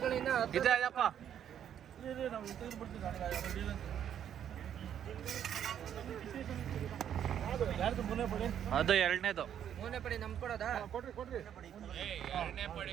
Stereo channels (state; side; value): quieter; left; 9.5 dB